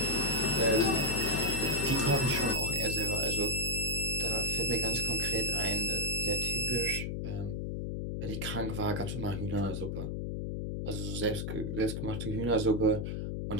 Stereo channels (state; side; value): noise; left; hum, 3 dB below the sound